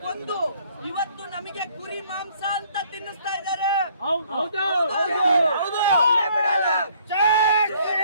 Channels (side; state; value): both; inverted; correlation -0.62